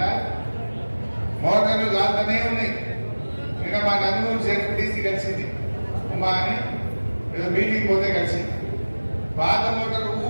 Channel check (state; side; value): inverted; both; correlation -1.00